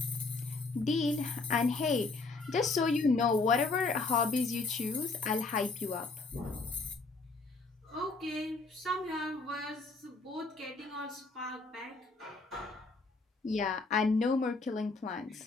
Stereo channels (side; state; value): right; quieter; 3.7 dB